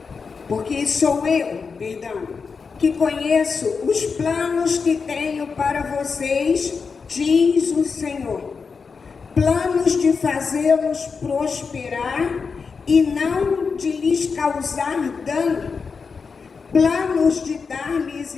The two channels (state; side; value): quieter; right; 5.2 dB